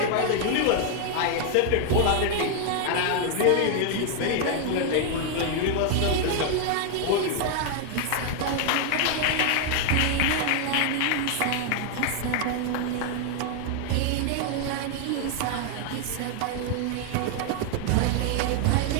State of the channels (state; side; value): different; both; correlation 0.00